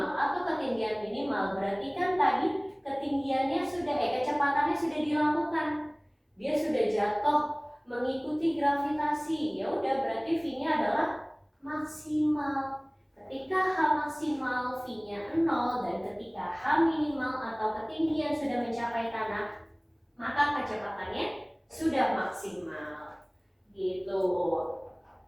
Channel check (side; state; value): both; identical; correlation 1.00